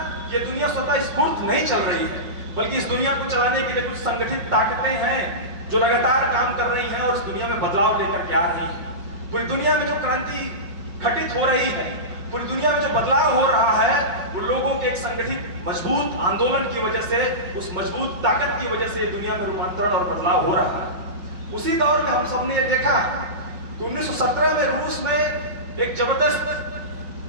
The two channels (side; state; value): left; late; 5.6 ms